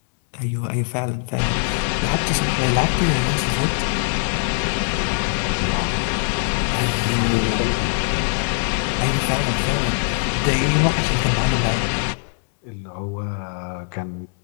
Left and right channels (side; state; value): right; silent; digital silence